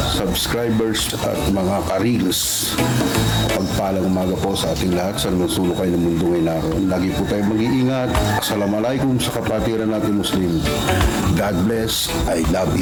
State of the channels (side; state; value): both; identical; correlation 1.00